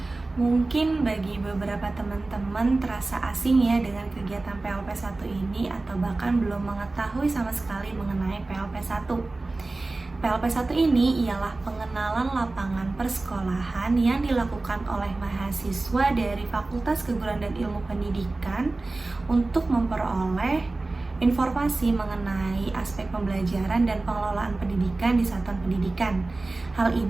Mungkin bagi beberapa teman-teman terasa asing ya dengan kegiatan PLP1 ini, atau bahkan belum mengetahui sama sekali mengenai PLP1. PLP1 ini ialah pengenalan lapangan persekolahan yang dilakukan oleh mahasiswa dari Fakultas Keguruan dan Ilmu Pendidikan untuk memperoleh informasi mengenai aspek pembelajaran dan pengelolaan pendidikan di satuan pendidikan. Hal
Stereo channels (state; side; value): quieter; left; 3.2 dB